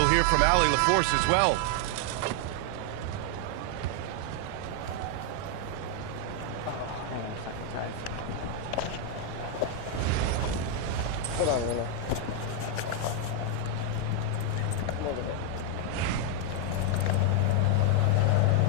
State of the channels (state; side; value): different; both; correlation 0.01